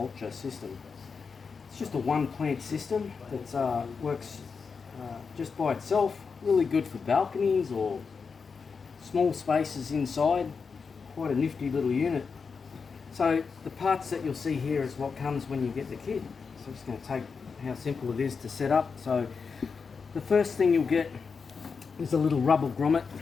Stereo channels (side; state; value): right; quieter; 5.3 dB